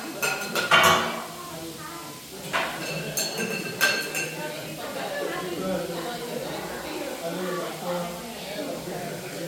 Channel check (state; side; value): identical; both; correlation 1.00